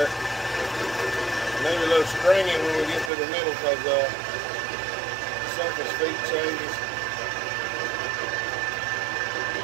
Maybe a little stringing when we get to the middle because the surface feet changes.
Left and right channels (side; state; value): left; drops out; at 3.1 s